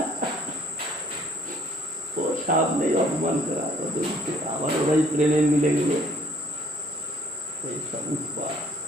ও সামনেই অপমান করা, আমার ওরাই প্রেমে মিলে গেল, এই সব উৎপাদ।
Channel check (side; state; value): both; normal; correlation 0.60